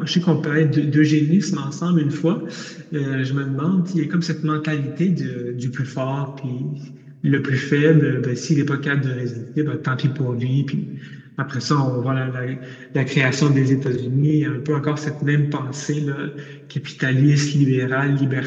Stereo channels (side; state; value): both; identical; correlation 1.00